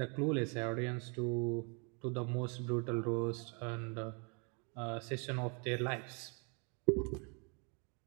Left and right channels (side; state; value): left; quieter; 35.4 dB